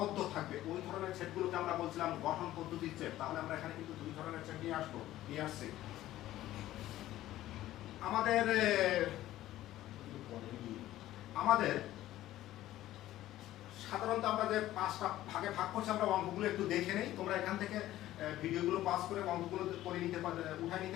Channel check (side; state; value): right; quieter; 14.5 dB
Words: থাকবে। ওই ধরনের সেটগুলোকে আমরা বলছিলাম গঠন পদ্ধতির সেট। তাহলে আমরা এখানে কিন্তু 2 ধরনের সেট নিয়ে আসছি। আমাদের সাধারণত আমরা যে 5টা ভাগে ভাগ করছি আমরা অঙ্কগুলো একটু দেখে নেই। তোমরা এখান থেকে ভিডিওগুলো পাস করে অঙ্কগুলো করে নিতে পারবে, উঠাই